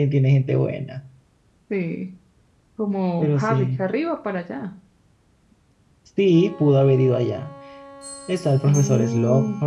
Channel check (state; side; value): identical; both; correlation 1.00